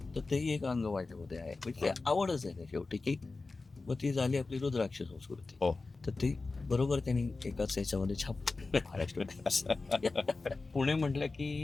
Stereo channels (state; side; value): quieter; right; 3.7 dB